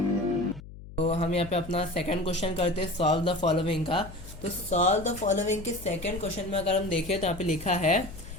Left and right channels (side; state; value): left; noise; hum, 15 dB below the sound